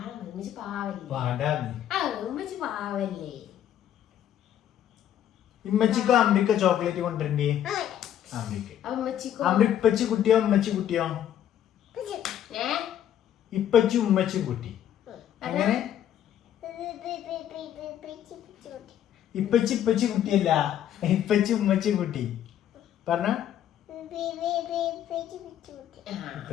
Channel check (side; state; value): right; quieter; 10.7 dB